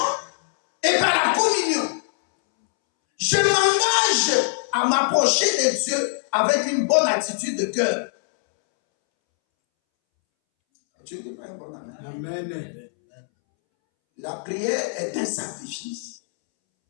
et par la communion. Je m'engage à m'approcher de Dieu avec une bonne attitude de cœur. Tu dis pas un bon amen. Amen. La prière est un sacrifice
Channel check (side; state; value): right; silent; 64 dB below the other